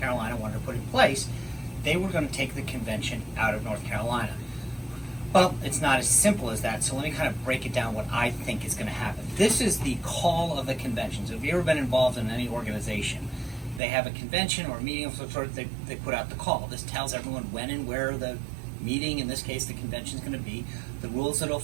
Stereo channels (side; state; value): left; drops out; at 13.8 s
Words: wanted to put in place, they were going to take the convention out of North Carolina. Well, it's not as simple as that, so let me kind of break it down what I think is going to happen. This is the call of the convention. So if you've ever been involved in any organization, they have a convention or a meeting of some sort, they put out the call. This tells everyone when and where the meeting, in this case the convention, is going to be, the rules that it'll